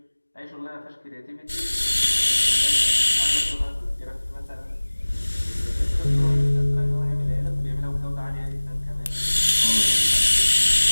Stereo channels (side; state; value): both; inverted; correlation -1.00